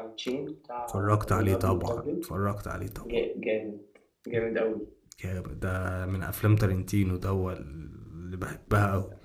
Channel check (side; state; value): both; identical; correlation 1.00